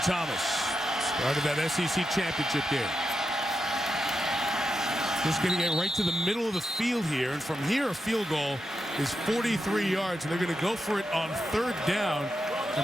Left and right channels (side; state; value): both; normal; correlation 0.87